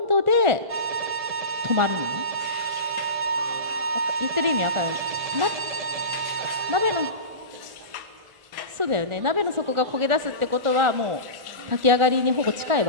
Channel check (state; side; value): late; left; 1.4 ms